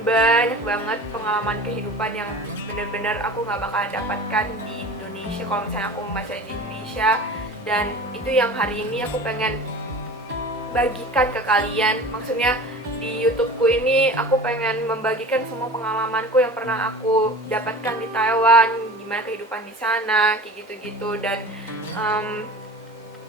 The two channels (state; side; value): normal; both; correlation 0.38